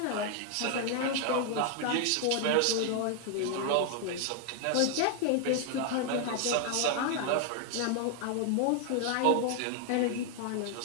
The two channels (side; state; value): both; different; correlation 0.00